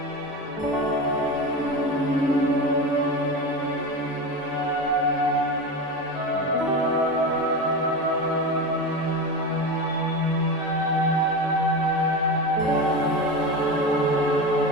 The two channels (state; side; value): normal; both; correlation 0.23